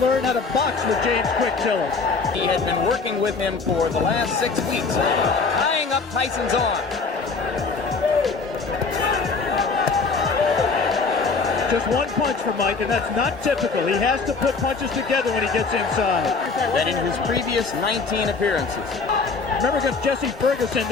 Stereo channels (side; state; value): right; quieter; 4.5 dB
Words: learn how to box with James Quick Tillis. He had been working with him for the last 6 weeks, tying up Tyson's arm. Just one punch for Mike, and that's not typical. He has to put punches together when he gets inside. That in his previous 19 appearances. Remember against Jesse Ferguson,